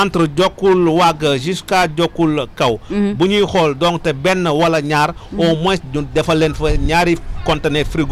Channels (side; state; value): both; identical; correlation 1.00